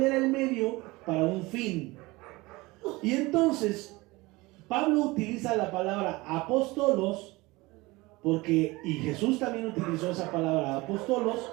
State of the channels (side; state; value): left; quieter; 22.1 dB